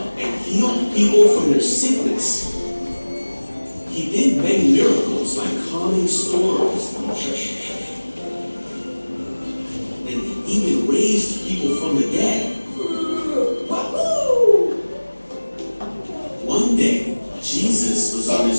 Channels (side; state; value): both; inverted; correlation -1.00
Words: and healed people from their sickness. He did many miracles like calming storms and even raised people from the dead. Wahoo! One day, Jesus was on